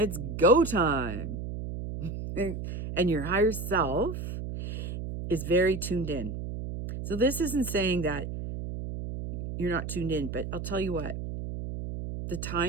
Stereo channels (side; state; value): right; noise; hum, 6 dB below the sound